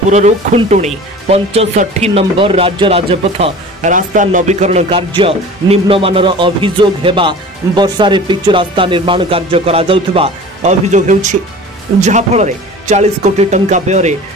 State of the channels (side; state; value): both; normal; correlation 0.40